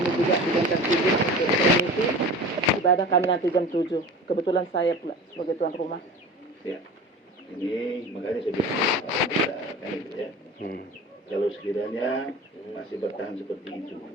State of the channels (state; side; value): normal; both; correlation 0.36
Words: juga digantar izin untuk permisi ibadah kami nanti jam 7. Kebetulan saya pula sebagai tuan rumah. Ya. Ini makanya saya bilang kan itu ya. Kalau sekiranya masih bertahan seperti itu,